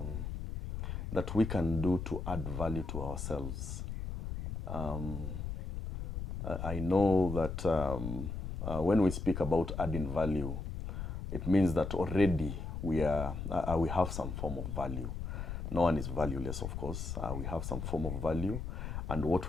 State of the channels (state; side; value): noise; left; rumble, 5 dB below the sound